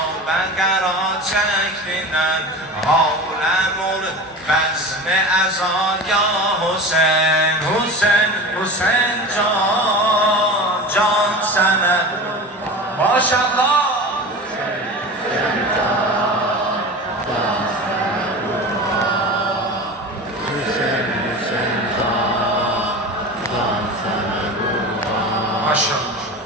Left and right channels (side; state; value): both; normal; correlation 0.32